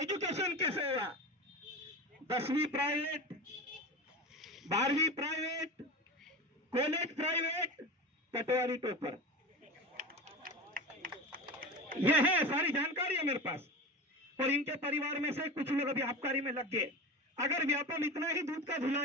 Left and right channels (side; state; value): both; normal; correlation 0.27